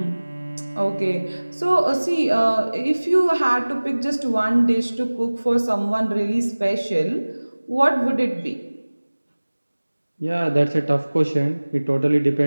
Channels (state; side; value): inverted; both; correlation -1.00